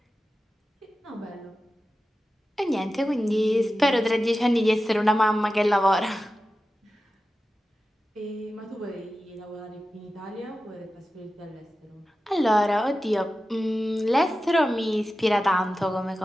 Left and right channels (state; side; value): normal; both; correlation 0.94